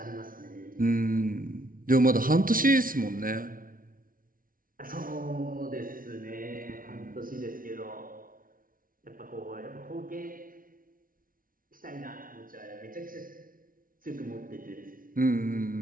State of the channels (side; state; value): left; late; 0.41 ms